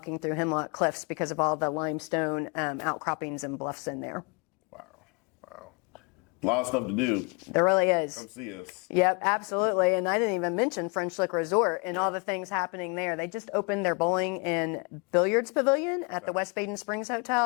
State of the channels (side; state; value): right; quieter; 32.4 dB